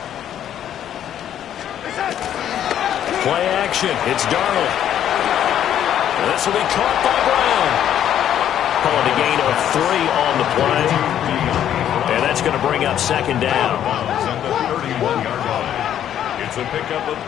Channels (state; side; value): quieter; right; 10.4 dB